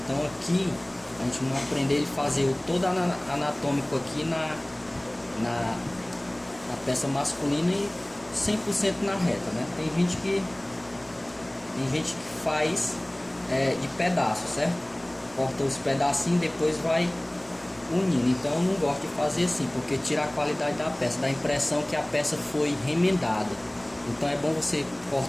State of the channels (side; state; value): right; noise; rumble, 27 dB below the sound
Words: aqui a gente não aprender a fazer o todo anatômico aqui na peça masculina e 100% na reta, né? Tem gente que faz de pedaço, certo? Corta os pedacinhos, depois vai unindo. Então eu não gosto de fazer assim, porque tira a qualidade da peça, dá a impressão que a peça foi remendada. Então é bom você